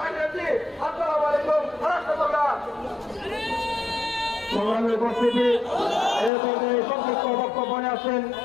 আছি। আসসালামু আলাইকুম রাষ্ট্রপতি। সংগ্রামী উপস্থিতি, এই পর্যায়ে সংক্ষিপ্ত বক্তব্য আছেন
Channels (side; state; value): right; drops out; at 6.3 s